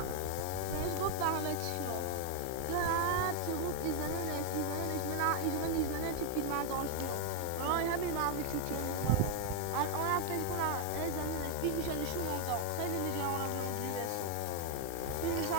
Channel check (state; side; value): different; both; correlation 0.00